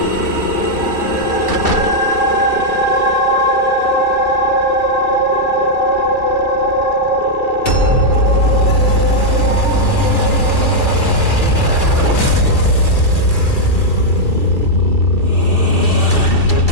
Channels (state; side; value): late; right; 2.7 ms